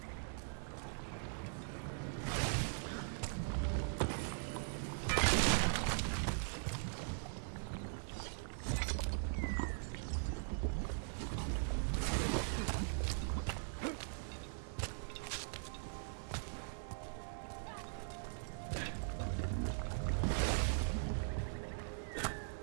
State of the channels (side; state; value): left; silent; digital silence